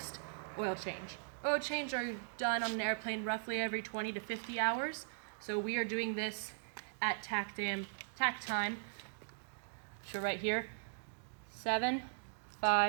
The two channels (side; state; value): left; silent; digital silence